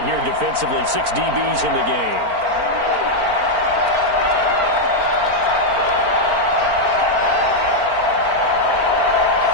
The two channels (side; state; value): left; late; 4.4 ms